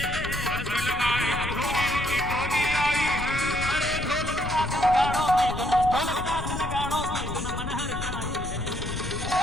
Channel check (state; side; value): noise; left; rumble, 6 dB below the sound